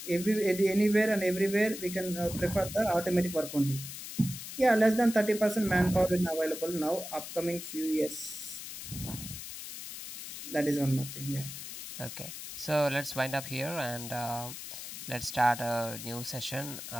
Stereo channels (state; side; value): noise; left; hiss, 10 dB below the sound